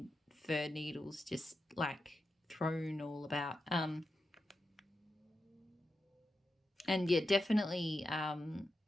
fir needles just, like, thrown all about. And, yeah, definitely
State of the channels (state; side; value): normal; both; correlation 0.89